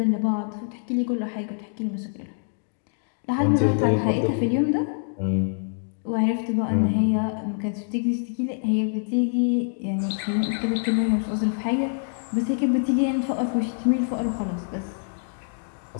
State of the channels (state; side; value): silent; right; digital silence